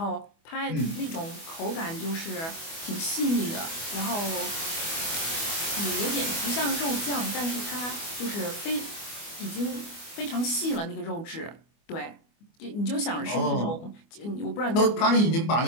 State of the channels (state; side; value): late; right; 24 ms